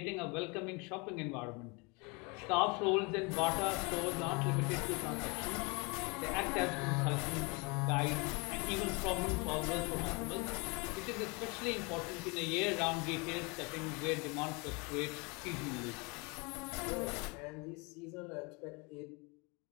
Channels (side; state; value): right; quieter; 29.4 dB